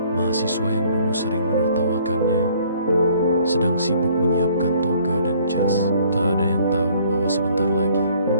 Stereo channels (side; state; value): both; inverted; correlation -0.60